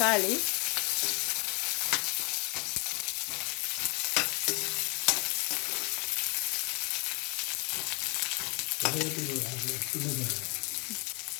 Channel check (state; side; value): quieter; right; 32.0 dB